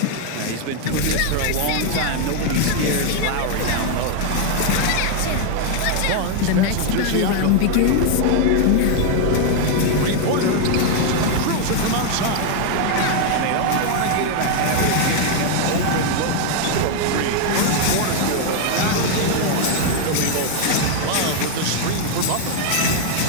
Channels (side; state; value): both; different; correlation 0.00